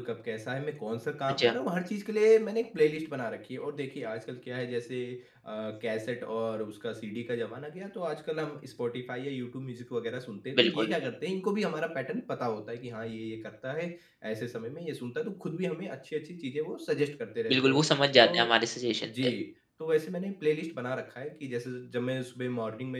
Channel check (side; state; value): both; identical; correlation 1.00